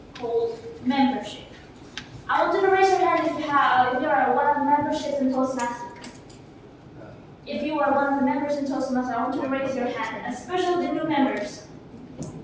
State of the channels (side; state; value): both; identical; correlation 1.00